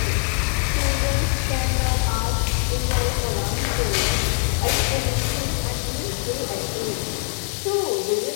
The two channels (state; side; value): quieter; right; 39.1 dB